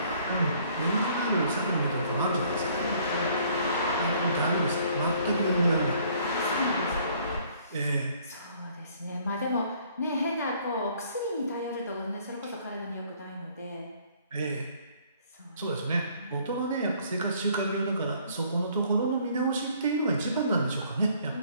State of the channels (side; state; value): both; inverted; correlation -0.60